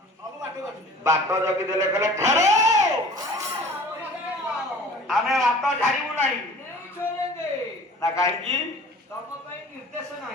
ବାଟ ଜଗି ଦେଲେ। କହିଲେ ଠାର ଆମେ ବାଟ ଛାଡ଼ିବୁ ନାହିଁ। ନା କାହିଁକି?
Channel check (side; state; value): both; normal; correlation 0.45